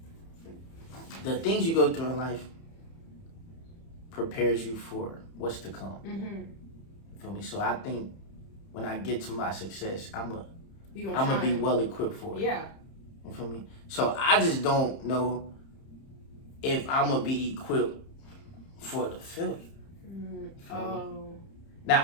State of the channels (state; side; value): late; right; 30 ms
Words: the things you go through in life prepares you for what's to come. You feel me? So I think when I get to my success, I'm gonna be well equipped for it. Yeah. You feel me? So I just don't know if I'm gonna be equipped for the failure. Oh. Now